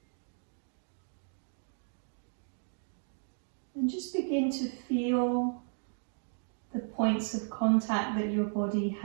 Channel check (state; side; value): silent; left; 55 dB below the other